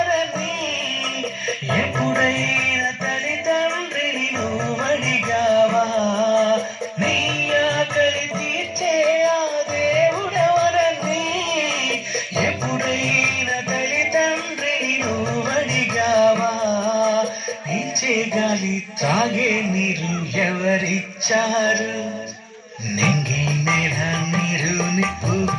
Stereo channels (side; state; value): both; identical; correlation 1.00